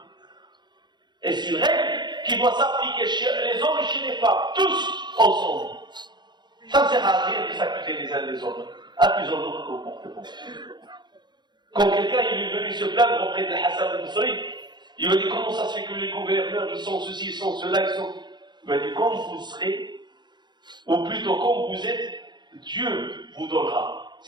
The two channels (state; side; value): late; left; 0.21 ms